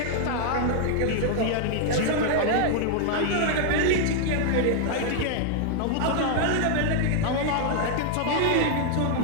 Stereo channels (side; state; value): both; different; correlation 0.00